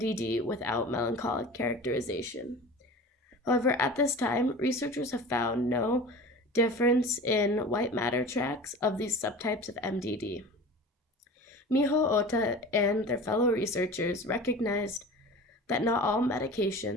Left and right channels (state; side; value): normal; both; correlation 0.37